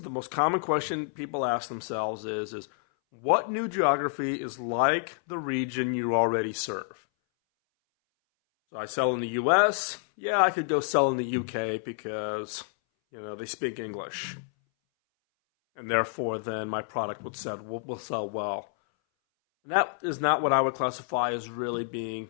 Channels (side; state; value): right; silent; 59 dB below the other